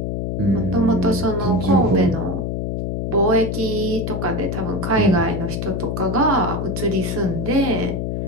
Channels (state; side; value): noise; left; hum, 2 dB below the sound